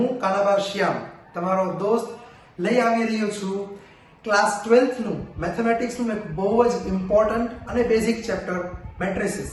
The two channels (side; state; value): both; identical; correlation 1.00